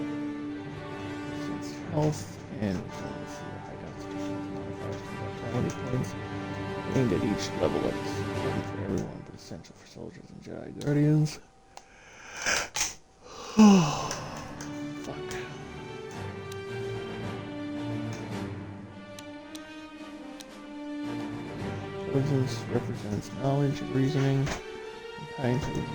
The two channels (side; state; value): both; identical; correlation 1.00